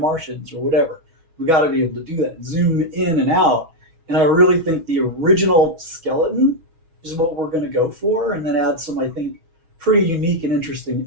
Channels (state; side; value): late; left; 6.2 ms